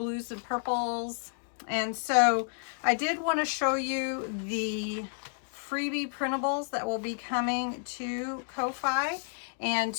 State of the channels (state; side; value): silent; right; digital silence